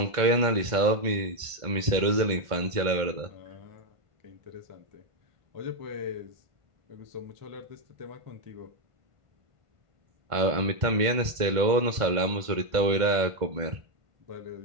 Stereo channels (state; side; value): late; left; 1.5 ms